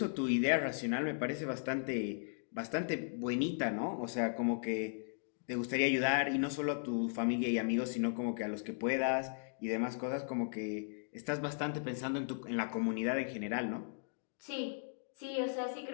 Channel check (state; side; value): silent; right; digital silence